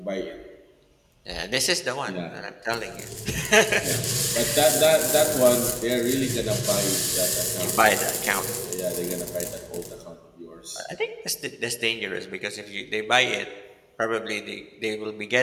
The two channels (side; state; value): both; identical; correlation 1.00